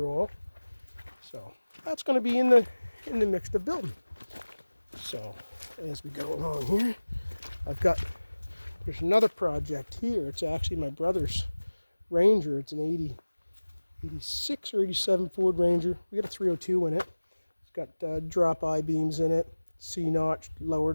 oil. So that's going to be in the mix of building. So as we go along here, there's another project here. It's actually my brother's Ranger. It's an 86 or 87 Ford Ranger. We got a 302 in it. It's got drop I-beams in it, C-notch,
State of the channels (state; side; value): inverted; both; correlation -1.00